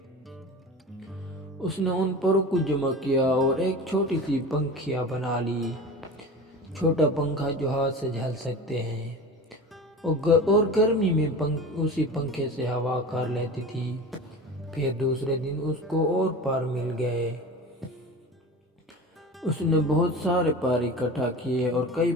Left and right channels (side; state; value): both; normal; correlation 0.33